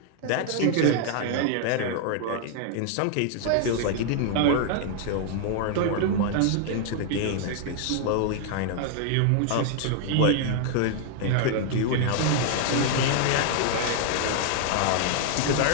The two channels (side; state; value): both; different; correlation 0.00